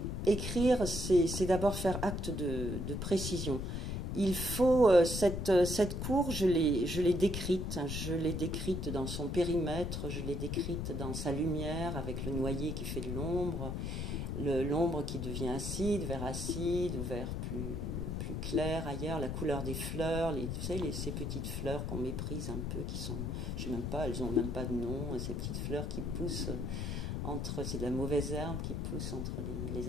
écrire, c'est d'abord faire acte de précision. Il faut, cette cour, je l'ai décrite dans son périmètre, je l'ai décrite dans sa lumière, avec le noyer qui fait de l'ombre qui devient acide, vert acide, ou vert plus clair ailleurs, la couleur des fleurs, vous savez, ces petites fleurs qu'on méprise un peu, qui sont, je sais même pas, elles ont même pas de nom, ces petites fleurs qui poussent c'est de la mauvaise herbe qui pousse entre les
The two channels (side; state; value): left; noise; rumble, 3 dB below the sound